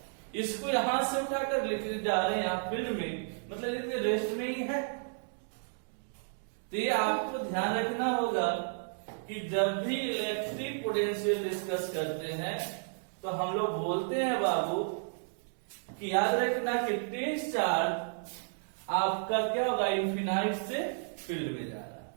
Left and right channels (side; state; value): left; silent; digital silence